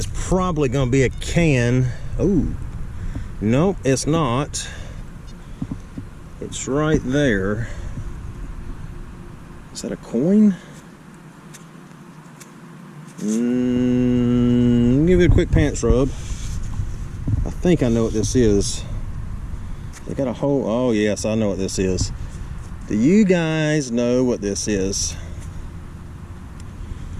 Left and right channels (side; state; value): both; identical; correlation 1.00